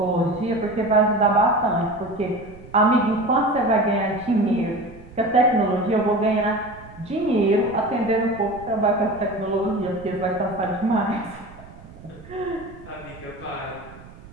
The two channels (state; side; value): noise; right; rumble, 19 dB below the sound